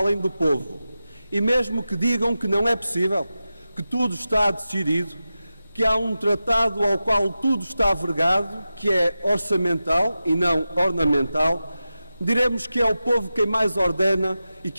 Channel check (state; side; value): inverted; both; correlation -0.93